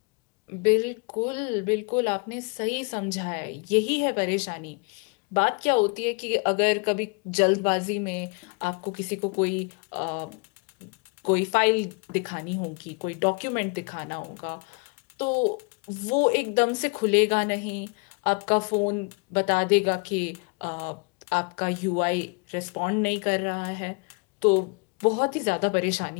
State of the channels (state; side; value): quieter; right; 32.3 dB